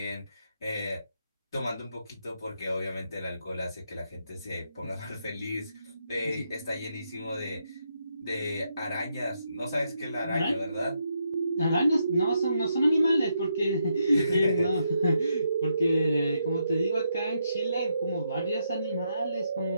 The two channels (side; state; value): both; inverted; correlation -0.79